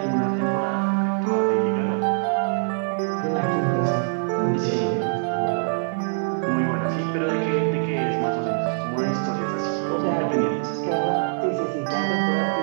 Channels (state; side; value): silent; left; 63 dB below the other